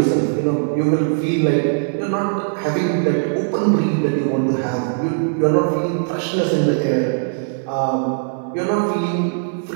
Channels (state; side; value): silent; left; 63 dB below the other